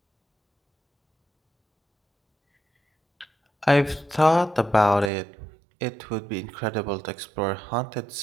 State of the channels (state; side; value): drops out; left; at 5.1 s